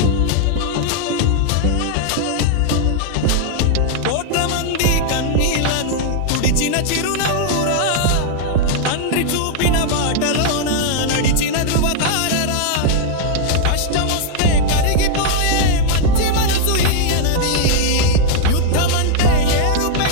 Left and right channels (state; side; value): different; both; correlation -0.01